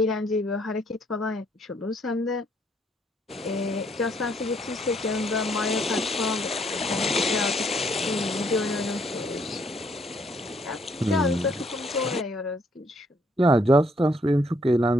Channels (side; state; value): both; normal; correlation 0.69